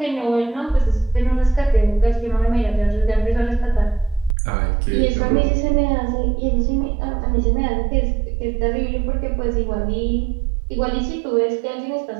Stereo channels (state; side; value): drops out; left; at 4.4 s